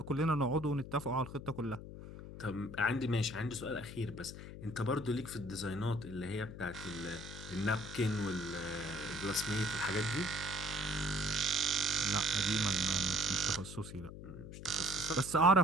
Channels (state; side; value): noise; left; hum, 12 dB below the sound